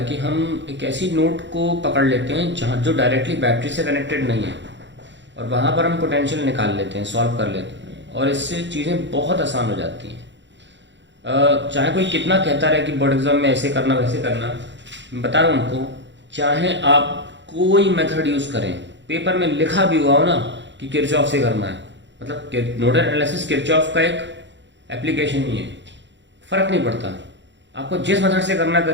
कि हम एक ऐसी नोड को पकड़ लेते हैं जहाँ जो डायरेक्टली बैटरी से कनेक्टेड नहीं है और वहाँ पर हम पोटेंशियल निकाल लेते हैं, सॉल्व कर लेते हैं और इससे चीज़ें बहुत आसान हो जाती हैं। चाहे कोई कितना कहता रहे कि बोर्ड एग्जाम में ऐसे करना वैसे करना, मैं बता रहा हूँ उनको, चाहे आप कोई मेथड यूज़ करें, पेपर में लिखा भी हुआ हो ना कि किरचॉफ से करना है, मतलब नोडल एनालिसिस किरचॉफ का एक एप्लीकेशन ही है, फ़र्क नहीं पड़ता। आपको जिस मेथड से करना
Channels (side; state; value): left; late; 0.53 ms